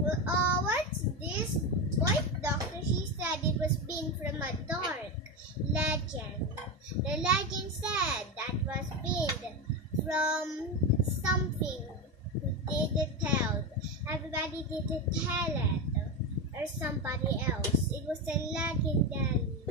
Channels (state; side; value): normal; both; correlation 0.15